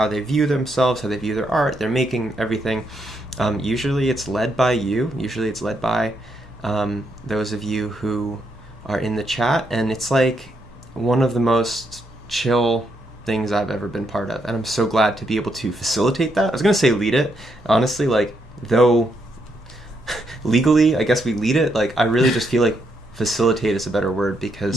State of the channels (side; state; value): both; normal; correlation 0.77